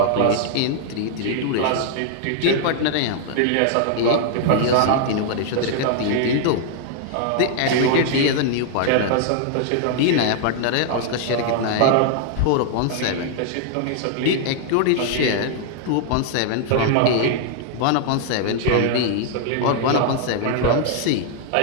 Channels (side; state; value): both; different; correlation 0.00